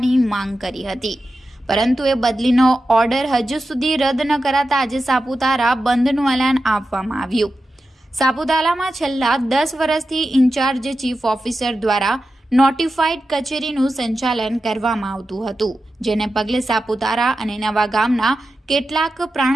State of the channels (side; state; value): both; normal; correlation 0.91